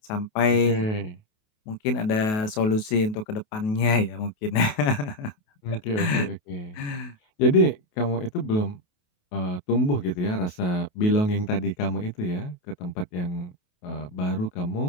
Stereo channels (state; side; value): late; right; 28 ms